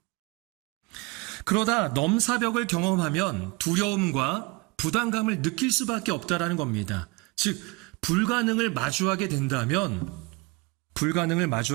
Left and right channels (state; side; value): quieter; left; 25.8 dB